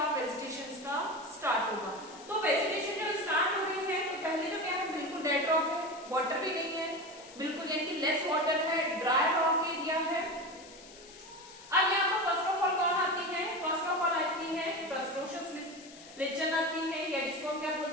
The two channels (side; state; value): left; noise; hiss, 19 dB below the sound